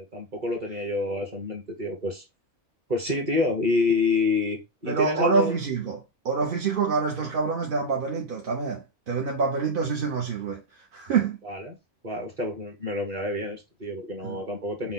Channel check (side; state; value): both; normal; correlation 0.01